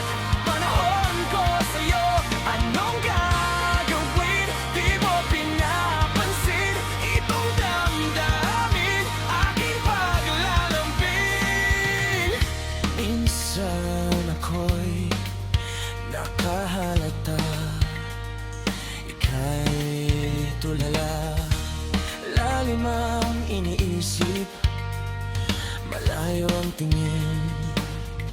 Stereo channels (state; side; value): identical; both; correlation 1.00